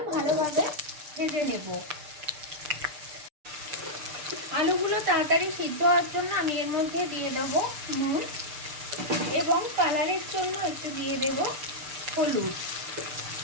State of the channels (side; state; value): left; late; 6.7 ms